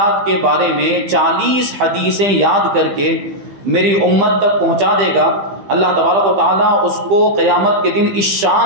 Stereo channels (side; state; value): left; late; 15 ms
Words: کے بارے میں 40 حدیثیں یاد کر کے میری امت تک پہنچا دے گا، اللہ تبارک و تعالیٰ اس کو قیامت کے دن اس